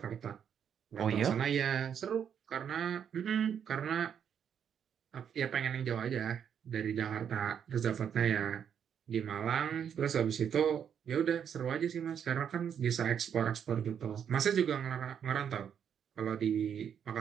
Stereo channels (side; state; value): left; quieter; 8.2 dB